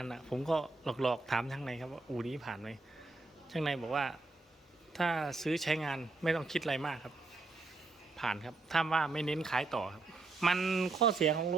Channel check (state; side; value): quieter; left; 3.5 dB